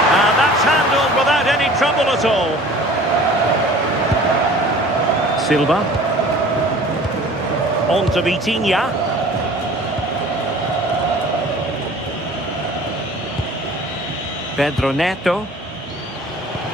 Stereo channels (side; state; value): both; normal; correlation 0.46